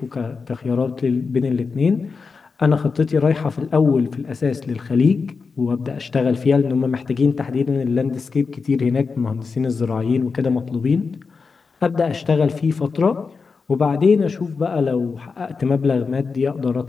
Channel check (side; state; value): right; quieter; 4.9 dB